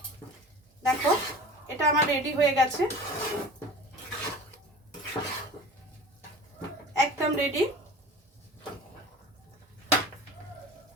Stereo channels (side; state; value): both; normal; correlation 0.39